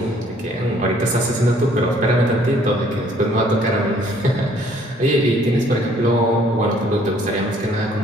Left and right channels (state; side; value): normal; both; correlation 0.61